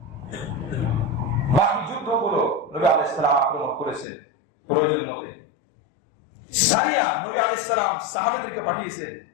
বাকি যুদ্ধগুলো নবী আলাইহিস সালাম আক্রমণ করেছেন প্রয়োজন মতে। সারিয়া নবী আলাইহিস সালাম সাহাবাদেরকে পাঠিয়েছেন।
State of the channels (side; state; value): right; drops out; at 4.0 s